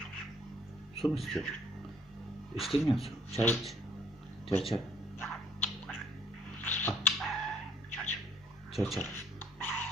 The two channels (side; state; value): both; normal; correlation 0.62